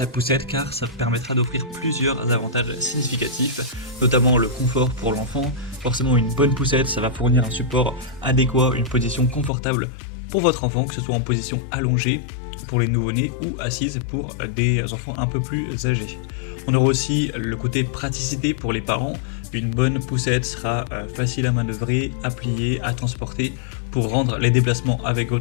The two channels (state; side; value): drops out; right; at 9.5 s